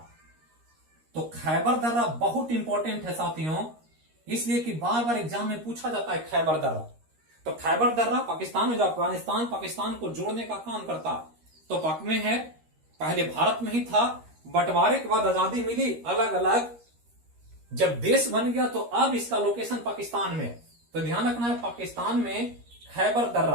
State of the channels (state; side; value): late; left; 13 ms